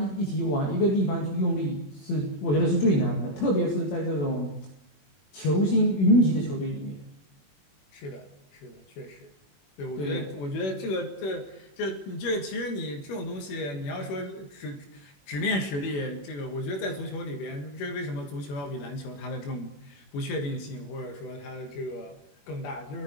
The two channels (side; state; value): right; late; 21 ms